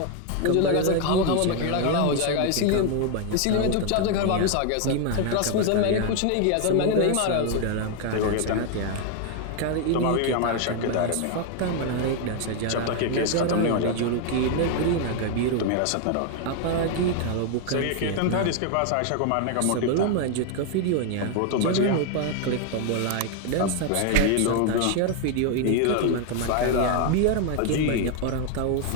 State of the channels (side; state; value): both; different; correlation 0.00